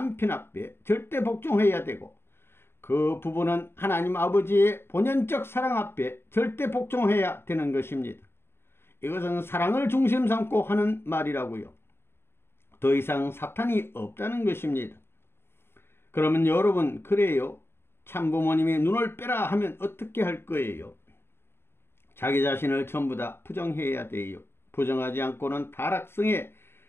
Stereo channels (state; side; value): late; right; 0.11 ms